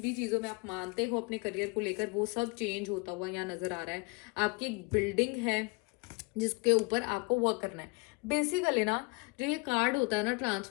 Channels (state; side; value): quieter; right; 30.1 dB